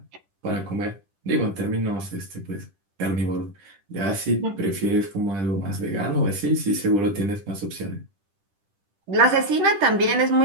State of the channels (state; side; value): late; left; 10 ms